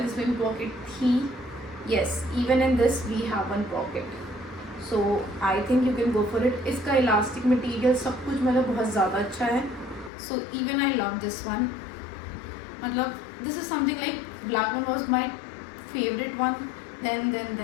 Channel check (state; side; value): drops out; right; at 10.1 s